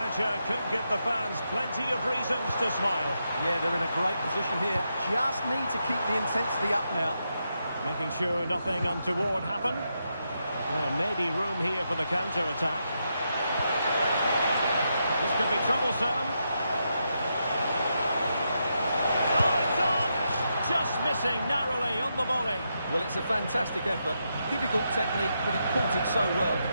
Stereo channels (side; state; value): both; inverted; correlation -0.83